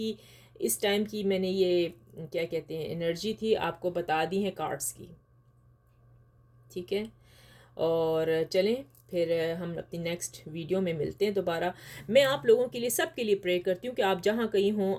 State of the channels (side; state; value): both; identical; correlation 1.00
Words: इस टाइम की मैंने ये क्या कहते हैं एनर्जी थी आपको बता दी है कार्ड्स की, ठीक है। और चलें फिर हम अपनी नेक्स्ट वीडियो में मिलते हैं दोबारा। मैं आप लोगों के लिए, सब के लिए प्रे करती हूँ कि आप जहाँ कहीं हों